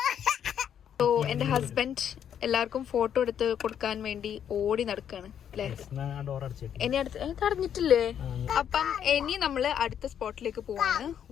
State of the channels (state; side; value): quieter; right; 9.0 dB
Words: സോ എൻ്റെ ഹസ്ബൻഡ് എല്ലാവർക്കും ഫോട്ടോ എടുത്ത് കൊടുക്കാൻ വേണ്ടി ഓടി നടക്കാണ് അല്ലേ? ഇനി അറിഞ്ഞിട്ടില്ലേ? അപ്പം ഇനി നമ്മള് അടുത്ത സ്പോട്ടിലേക്ക് പോവാണ്,